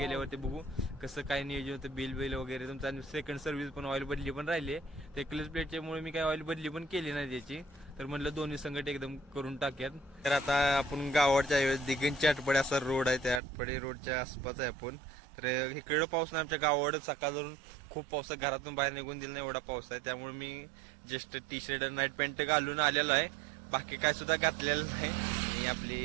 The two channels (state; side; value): drops out; left; at 13.4 s